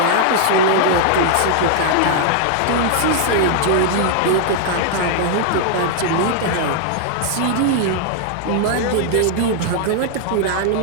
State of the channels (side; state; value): both; different; correlation 0.00